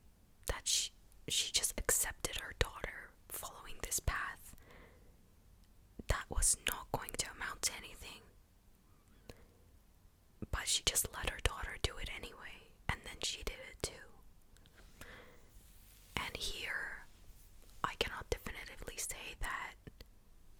that she just accepted her daughter following this path that was not going to amount to anything, but she just let her daughter do it anyway, and then she did it too. And here, I cannot definitively say that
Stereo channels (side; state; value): both; identical; correlation 1.00